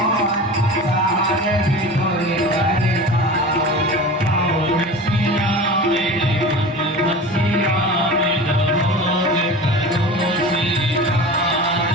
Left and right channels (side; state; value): both; normal; correlation 0.34